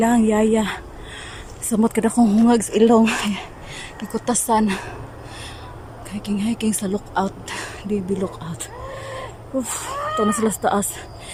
yaya. Samot kada kong hungag sa ilong. Ikutasan. Hiking sa lookout. DB lookout. Ito na sila sa taas.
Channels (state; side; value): identical; both; correlation 1.00